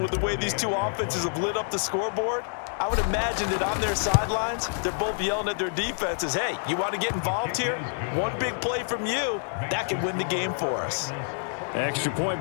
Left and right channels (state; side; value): silent; right; digital silence